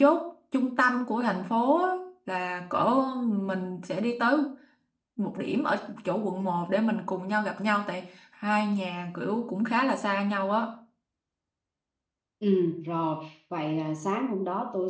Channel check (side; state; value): both; identical; correlation 1.00